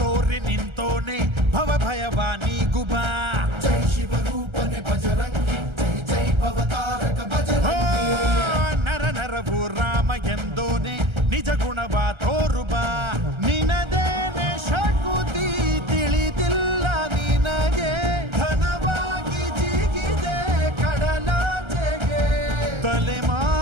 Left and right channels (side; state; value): left; late; 1.3 ms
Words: ನಿಂತೋನೆ ಭವ ಭಯವಾ ನೀಗುಬಾ ಜೈ ಶಿವ ರೂಪನೆ ಬಜರಂಗಿ ಜೈ ಜೈ ಭವತಾರಕ ಬಜರಂಗಿ ನರ ನರವು ರಾಮ ಎಂದೋನೆ ನಿಜ ಗುಣವಾ ತೋರುಬಾ ನಿನದೇನೆ ಶಕುತಿ ತಿಳಿದಿಲ್ಲ ನಿನಗೆ ಘನವಾಗಿ ಜಿಗಿದೆ ಕಡಲಾಚೆಗೆ